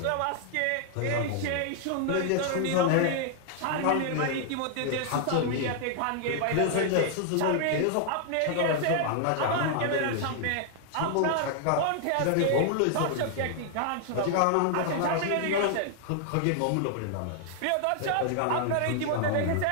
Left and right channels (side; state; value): both; different; correlation 0.00